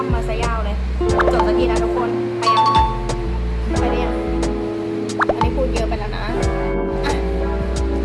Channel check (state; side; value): identical; both; correlation 1.00